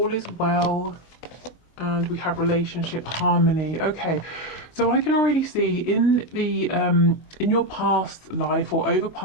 is well. And we have relationship harmony. Okay, so I can already see in the in your past life or over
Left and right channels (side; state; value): right; late; 24 ms